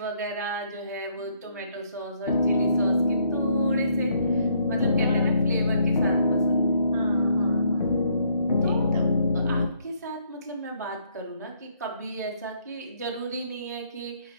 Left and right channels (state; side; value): inverted; both; correlation -0.68